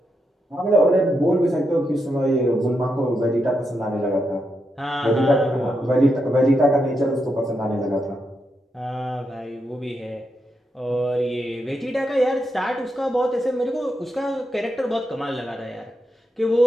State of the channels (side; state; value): both; normal; correlation 0.84